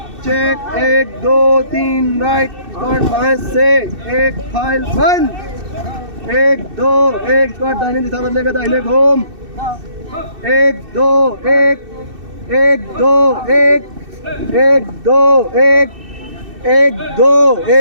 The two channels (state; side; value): late; left; 2.6 ms